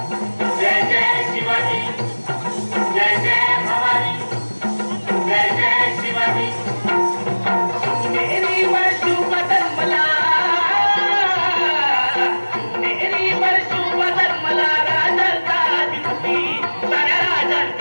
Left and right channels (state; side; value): inverted; both; correlation -1.00